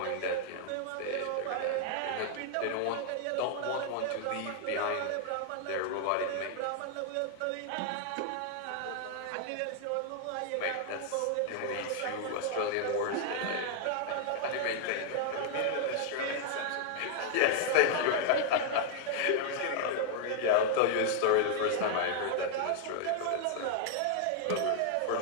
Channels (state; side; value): different; both; correlation 0.00